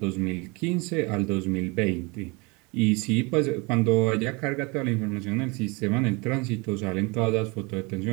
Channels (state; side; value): quieter; left; 27.7 dB